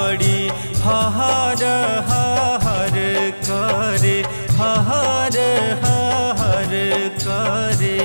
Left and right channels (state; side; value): inverted; both; correlation -1.00